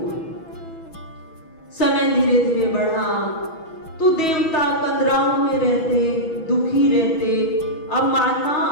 समय धीरे धीरे बढ़ा तो देवता कंदराओं में रहते, दुखी रहते। अब माता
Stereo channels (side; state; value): right; late; 6.1 ms